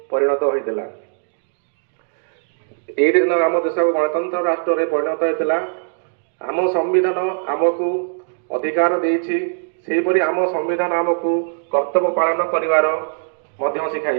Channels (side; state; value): left; silent; digital silence